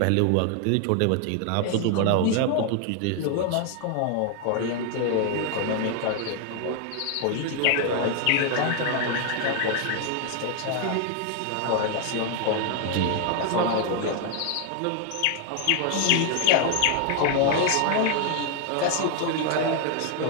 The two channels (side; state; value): both; different; correlation 0.00